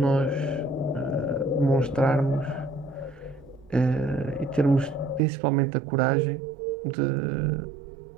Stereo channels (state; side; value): drops out; left; at 5.2 s